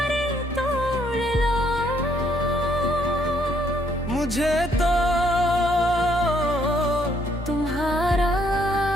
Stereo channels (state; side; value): normal; both; correlation 0.70